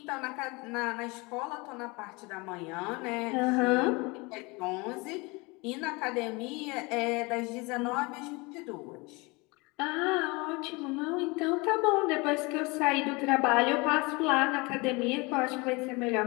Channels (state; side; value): quieter; right; 26.2 dB